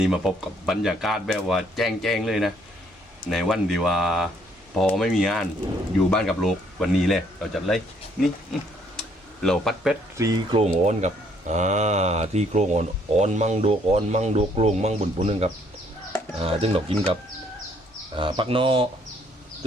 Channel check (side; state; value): both; normal; correlation 0.66